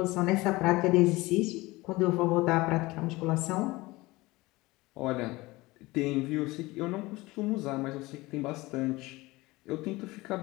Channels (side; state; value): right; quieter; 20.9 dB